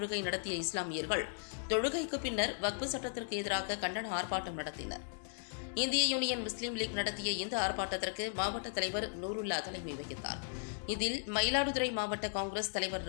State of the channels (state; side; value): silent; right; digital silence